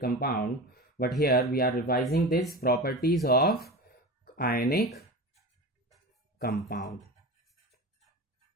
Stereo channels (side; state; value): both; normal; correlation 0.30